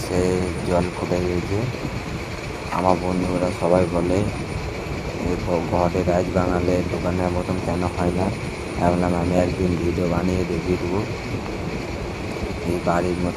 জল ফুটে গিয়েছে। আমার বন্ধুরা সবাই বলে ঘরে রাইস বানালে দোকানের মতন কেন হয় না। ভাবলাম আমি একদিন ভিডিও বানিয়ে দেখিয়ে দেবো, এই বাড়ির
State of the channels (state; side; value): identical; both; correlation 1.00